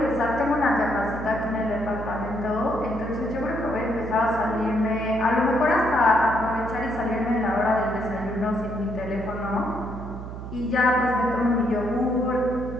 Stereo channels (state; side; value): noise; right; hum, 9 dB below the sound